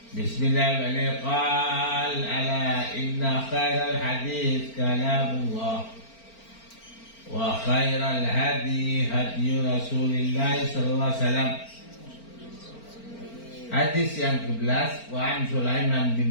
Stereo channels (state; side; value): late; right; 4.4 ms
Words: Bismillahirrahmanirrahim. Qala ala inna khairal hadits kalamullah wa khairal hadi hadi Rasulillah sallallahu alaihi wasallam. Hadis yang ke-11, wa an Sulaiman